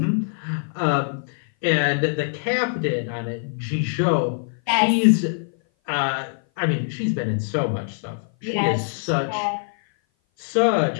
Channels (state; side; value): silent; right; 57 dB below the other